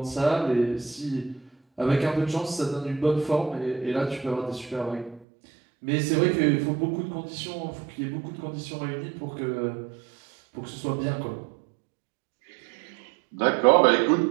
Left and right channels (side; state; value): left; drops out; at 5.2 s